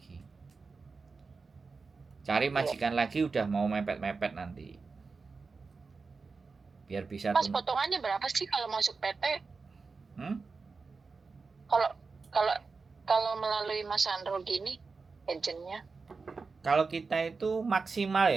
Cari Iya. majikan lagi udah mau mepet-mepet nanti. Biar bisa Mas, potongannya berapa sih kalau masuk PT? Hmm? Kalau kalau kalau melalui Mas Sandro gini, agentnya? Kalau kita itu maksimal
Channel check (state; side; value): quieter; left; 4.5 dB